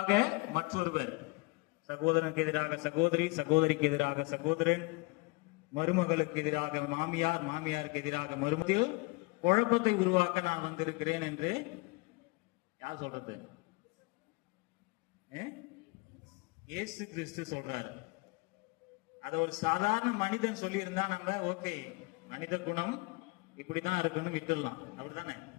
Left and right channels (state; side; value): quieter; right; 26.5 dB